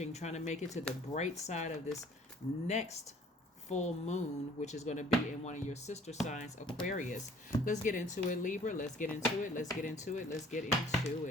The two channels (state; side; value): normal; both; correlation 0.55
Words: trying to make it to the bright side of this next full moon, which is going to be in one of your sister signs, Aquarius. Let's get into it, Libra. Let's get into it. Let's get into it. Let's get into